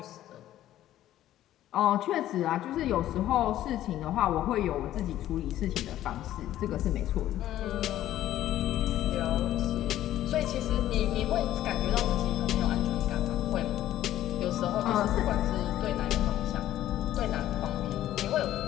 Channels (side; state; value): right; quieter; 13.1 dB